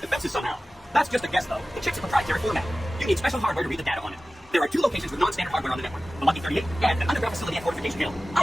defenses somehow. That's just a guess, though. The chip's a proprietary format. You need special hardware to read the data on it. There are 2 locations with non-standard hardware on the network. The lucky 38 and an underground facility at Fortification Hill.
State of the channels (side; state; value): both; normal; correlation 0.96